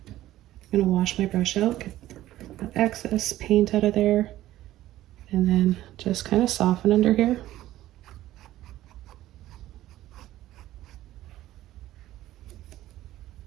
I'm going to wash my brush out, get that excess paint out of there, and then just kind of soften under here.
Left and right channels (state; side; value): quieter; left; 14.6 dB